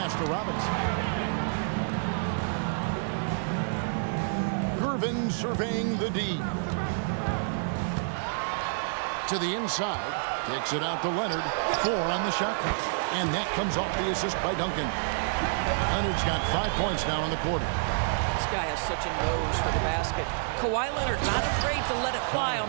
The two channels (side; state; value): left; silent; 58 dB below the other